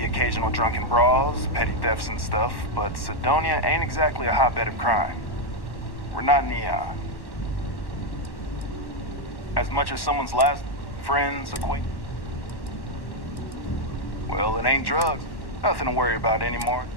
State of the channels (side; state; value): right; late; 1.1 ms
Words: occasional drunken brawls, petty thefts and stuff, but Sidonia ain't exactly a hotbed of crime. We're not Neon. As much as someone's last friends, acquaintances. Well, it ain't drugs. Nothing to worry about anymore.